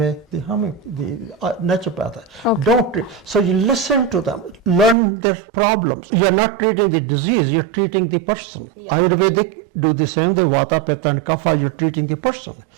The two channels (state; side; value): drops out; left; at 5.0 s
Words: the naturopath. So you listen to them, learn their problems. You're not treating the disease, you're treating the person. Yeah, Ayurvedic do the same, the Vata, Pitta and Kapha, you're treating the person.